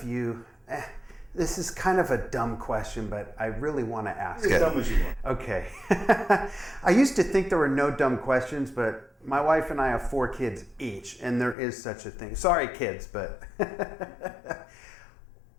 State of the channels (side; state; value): right; drops out; at 11.6 s